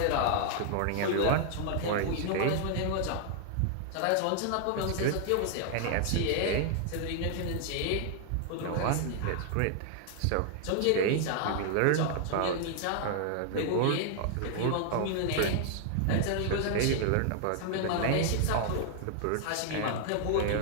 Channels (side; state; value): both; different; correlation 0.00